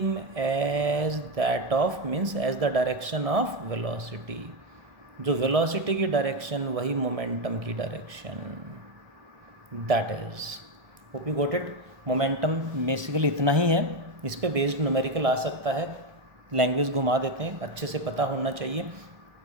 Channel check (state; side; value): late; left; 1.3 ms